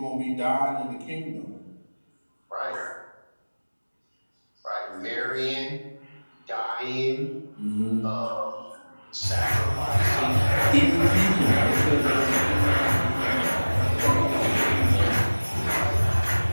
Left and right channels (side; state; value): both; inverted; correlation -1.00